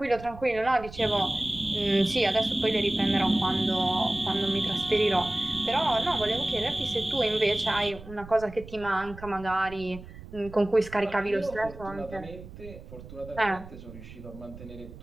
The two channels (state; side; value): noise; right; rumble, 15 dB below the sound